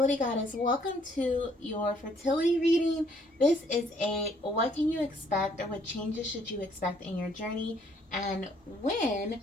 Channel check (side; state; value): both; normal; correlation 0.65